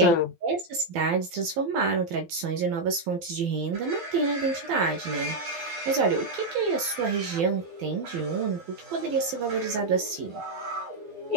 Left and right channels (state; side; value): late; left; 12 ms